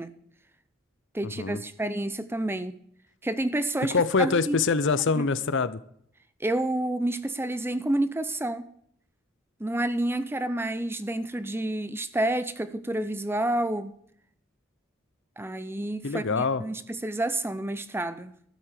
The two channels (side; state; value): both; normal; correlation 0.49